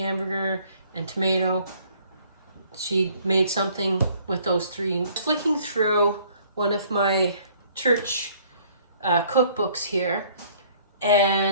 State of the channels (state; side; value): inverted; both; correlation -0.59